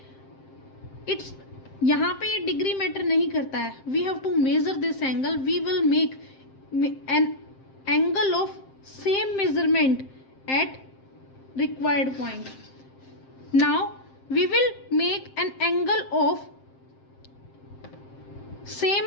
It's यहाँ पे ये डिग्री मैटर नहीं करता है. We have to measure this angle. We will make an angle of same measurement at required point. Now we will make an angle of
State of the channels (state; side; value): late; right; 7.6 ms